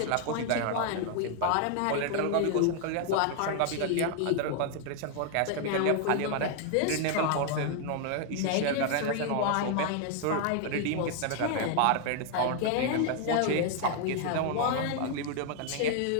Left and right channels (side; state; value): both; different; correlation 0.00